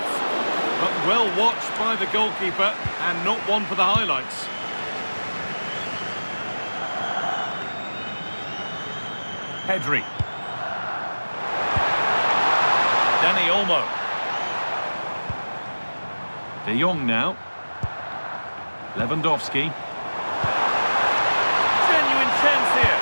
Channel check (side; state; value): both; inverted; correlation -1.00